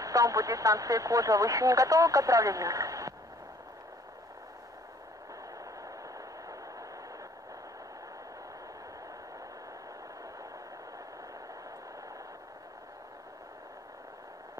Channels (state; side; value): normal; both; correlation 0.57